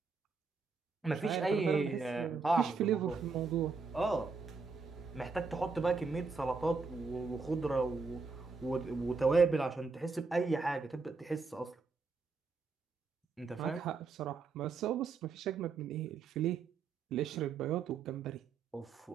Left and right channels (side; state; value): left; quieter; 4.5 dB